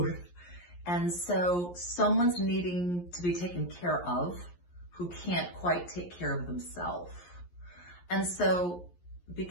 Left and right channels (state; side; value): late; right; 11 ms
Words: And so someone's needing to be taken care of who can't quite take care of themselves. And so